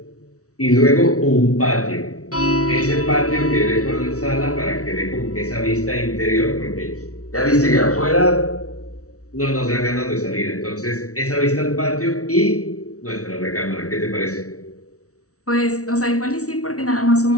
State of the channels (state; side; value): late; right; 0.65 ms